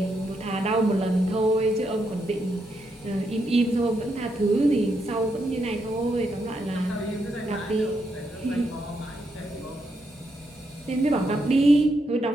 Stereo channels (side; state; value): both; normal; correlation 0.80